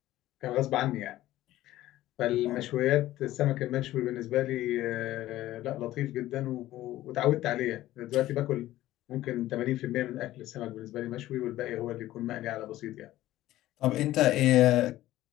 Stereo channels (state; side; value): quieter; right; 15.1 dB